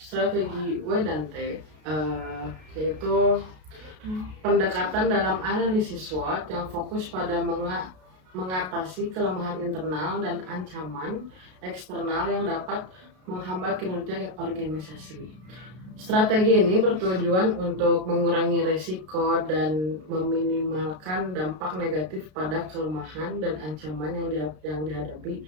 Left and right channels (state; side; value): late; left; 33 ms